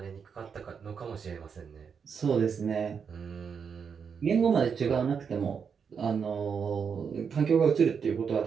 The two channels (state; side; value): quieter; left; 6.5 dB